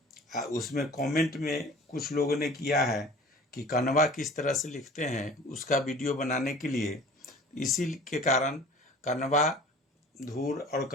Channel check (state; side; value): normal; both; correlation 0.45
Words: उसमें कमेंट में कुछ लोगों ने किया है कि कनवा किस तरह से लिखते हैं उसका वीडियो बनाने के लिए, इसी के कारण कनवा, धूर और